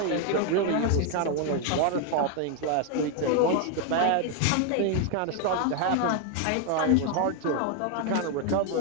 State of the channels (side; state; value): both; different; correlation 0.01